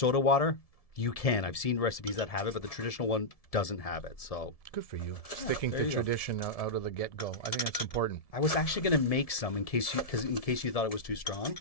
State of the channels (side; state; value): right; late; 1.7 ms